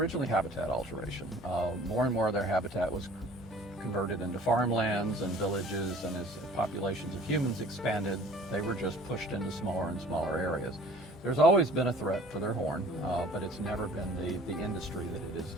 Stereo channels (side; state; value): both; normal; correlation 0.49